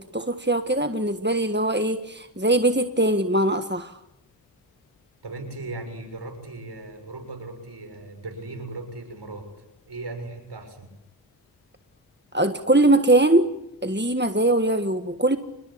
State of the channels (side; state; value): both; normal; correlation 0.20